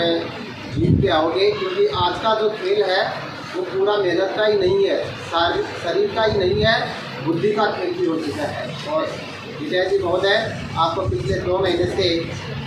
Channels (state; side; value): identical; both; correlation 1.00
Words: जीत के आओगे, क्योंकि आज का जो खेल है वो पूरा मेहनत का ही नहीं है, शरीर का ही नहीं है, बुद्धि का खेल भी हो चुका है। और विजय जी महोदय आपको पिछले 2 महीने से